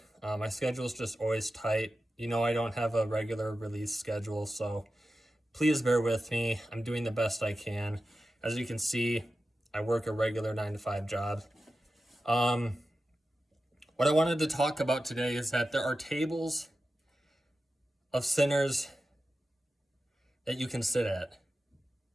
My schedule is just always tight. You know, I don't have a regular release schedule, so please bear with me. I'm doing the best I can. As you can see, I work a regular 9-to-5 job. What I wanted to talk about today is that there are tables of sinners that you can sit at.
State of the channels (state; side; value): normal; both; correlation 0.93